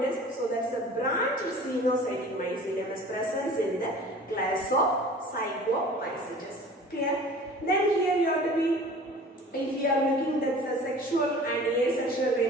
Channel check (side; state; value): both; normal; correlation 0.44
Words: is, so that's a branch xenocytic mycelium is presence in the class of Zygomycetes. Clear? Then here you have to be, if you are looking that's a sexual and asexual